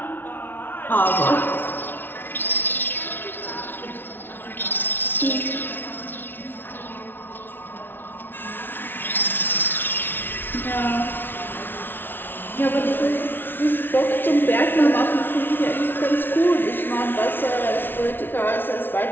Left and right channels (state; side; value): late; right; 0.10 ms